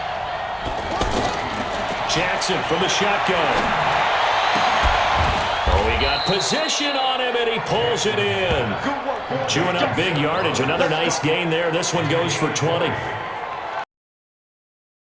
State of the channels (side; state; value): both; identical; correlation 1.00